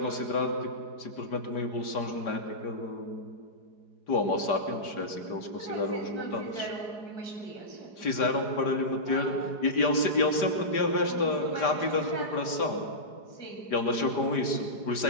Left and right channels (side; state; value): right; late; 5.0 ms